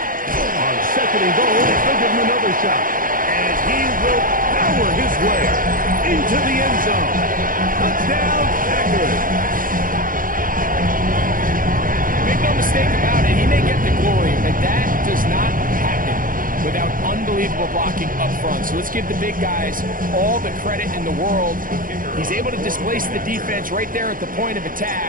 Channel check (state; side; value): late; left; 0.40 ms